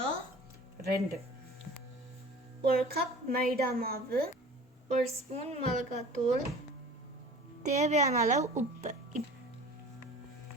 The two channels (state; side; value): normal; both; correlation 0.42